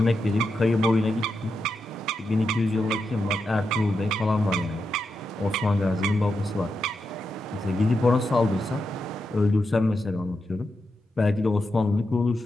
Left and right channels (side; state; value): both; normal; correlation 0.86